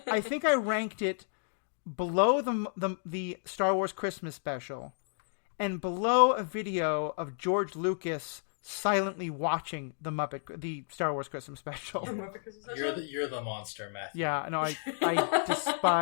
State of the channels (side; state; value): right; silent; digital silence